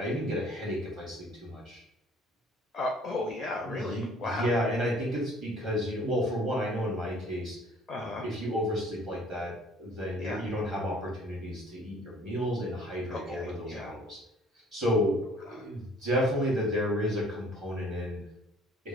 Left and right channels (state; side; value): normal; both; correlation 0.55